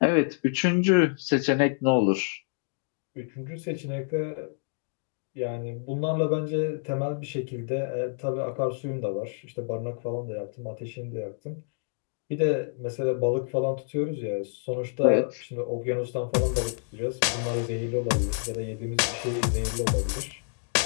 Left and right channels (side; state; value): right; silent; digital silence